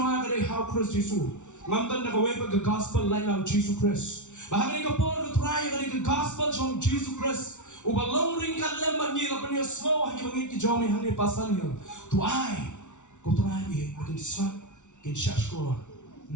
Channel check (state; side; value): late; right; 0.85 ms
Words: ka how Christ Jesus ngamtan na kaway pag gospel line of Jesus Christ. Bahagi ka po ka try ka gospel from Jesus Christ. Ubalong ring kan lemban ni lapan niya slow hagi mangit ki jome hangi pasan niya. Tuay ko try ni makin swat kin shashkor.